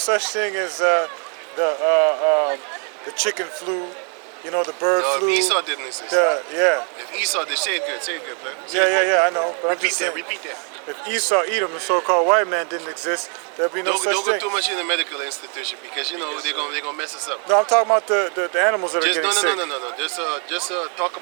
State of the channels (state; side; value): quieter; left; 39.5 dB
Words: thing as the chicken flu, you know, the bird No, flu. if Esau didn't exist. If Esau did, say it good, man. Yeah, I know. But I'm Repeat just that, saying, repeat that. if Esau, Edom, the so-called white man didn't exist, there'd be no Don't such go thing. too much in the medical institution because you know they're gonna mess us up. No, I'm talking about the animals that are Just getting sick. no. Just talk